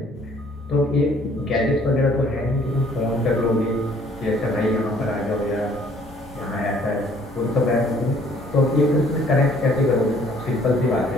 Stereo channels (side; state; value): left; noise; rumble, 27 dB below the sound